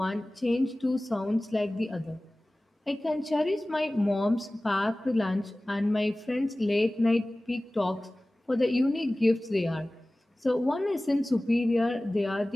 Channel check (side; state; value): both; normal; correlation 0.98